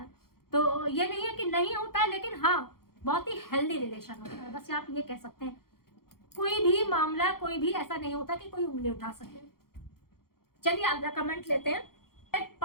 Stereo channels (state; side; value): late; right; 0.93 ms